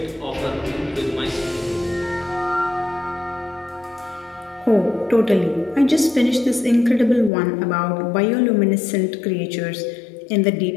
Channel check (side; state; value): right; drops out; at 7.3 s